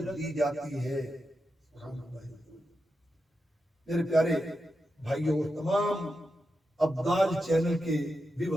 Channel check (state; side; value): normal; both; correlation 0.88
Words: دی جاتی ہے۔ میرے پیارے بھائیوں، تمام ابدال چینل کے